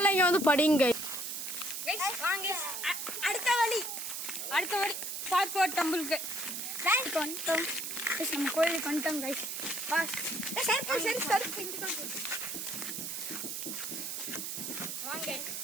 இங்க வந்து படிங்க. அடுத்த வழி பார்ட் 4 டெம்பிளுக்கு வந்துட்டோம். நம்ம கோயிலுக்கு வந்துட்டோம் கைஸ்.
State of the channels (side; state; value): right; noise; hiss, 5 dB below the sound